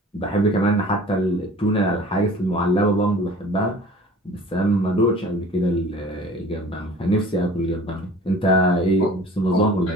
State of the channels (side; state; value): both; normal; correlation 0.45